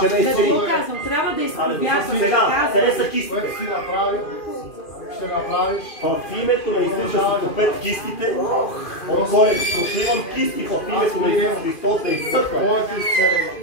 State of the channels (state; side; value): late; right; 2.5 ms